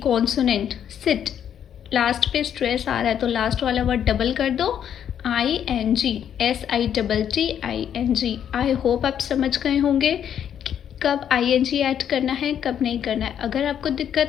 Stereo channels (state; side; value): quieter; right; 9.2 dB